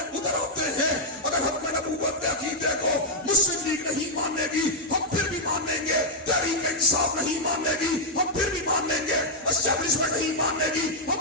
اتر آتے ہیں۔ اگر حق میں نبوت کے عقیدے کو مسلم لیگ نہیں مانے گی ہم پھر بھی مانیں گے، تحریک انصاف نہیں مانے گی ہم پھر بھی مانیں گے، اسٹیبلشمنٹ نہیں مانے گی ہم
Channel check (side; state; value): both; normal; correlation -0.03